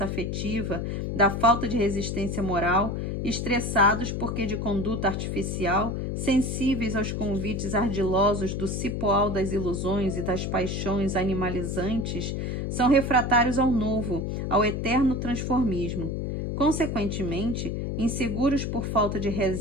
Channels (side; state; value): left; noise; hum, 2 dB below the sound